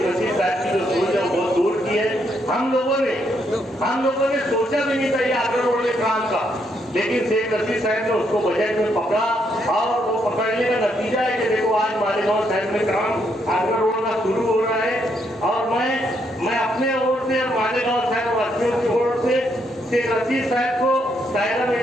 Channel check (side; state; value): both; normal; correlation 0.75